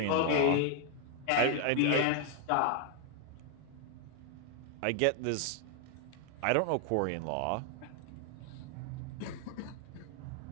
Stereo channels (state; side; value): different; both; correlation 0.00